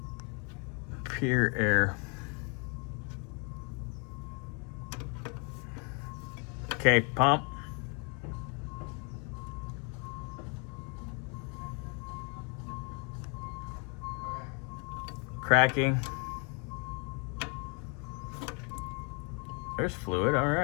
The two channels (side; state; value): right; quieter; 36.0 dB